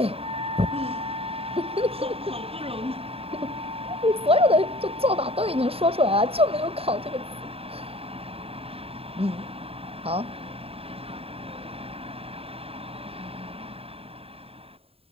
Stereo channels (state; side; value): late; left; 0.28 ms